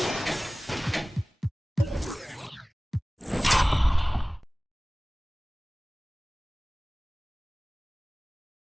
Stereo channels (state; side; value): normal; both; correlation 0.98